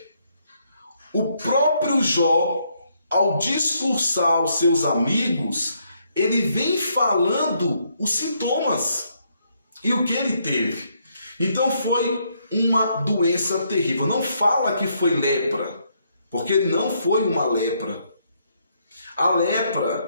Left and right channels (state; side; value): inverted; both; correlation -0.74